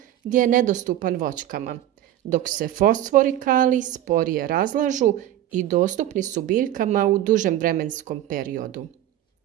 gdje je nedostupan voćkama, dok se fosfor i kalij sporije razlažu i dostupni su biljkama u dužem vremenskom periodu.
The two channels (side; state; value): left; quieter; 12.7 dB